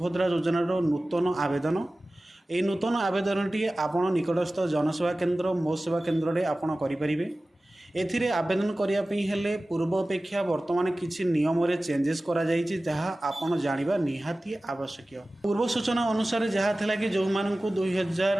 योजनार नूतन आवेदन। ये नूतन आवेदन टी आपण निकटस्थ जनसेवा केन्द्र मो सेवा केन्द्र में आपण करें। एथिरे आवेदन करने हेले पूर्व अपेक्षा वर्तमान किसी नियम रे चेंजेस करा जाइछि जहाँ आपण जानिबा निहाती आवश्यक। पूर्व सूचना अनुसार जहाँ थिला कि जो मानकु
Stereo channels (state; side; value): normal; both; correlation 0.97